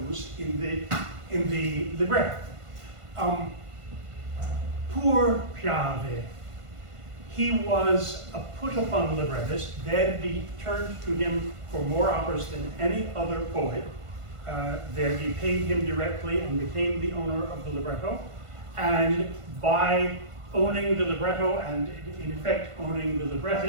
in the libretto. Poor Piave. He was a put-upon librettist. Verdi turned to him for more operas than any other poet. Verdi paid him directly and became the owner of the libretto. And by owning the libretto and, in effect, owning the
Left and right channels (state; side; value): late; left; 1.5 ms